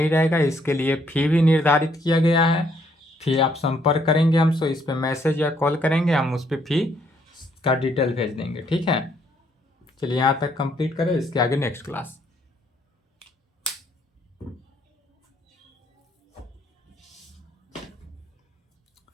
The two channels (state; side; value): normal; both; correlation 0.69